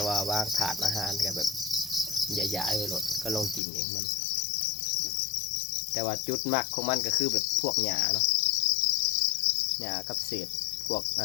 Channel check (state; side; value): drops out; right; at 3.6 s